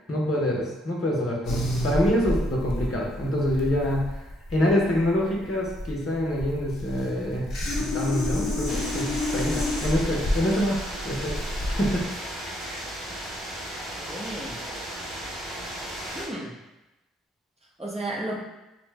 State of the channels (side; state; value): both; normal; correlation 0.72